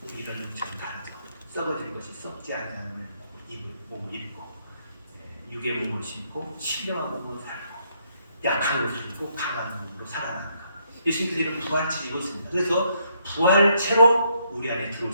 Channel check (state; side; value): inverted; both; correlation -0.73